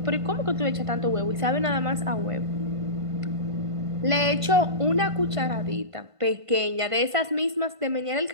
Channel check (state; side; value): late; left; 1.5 ms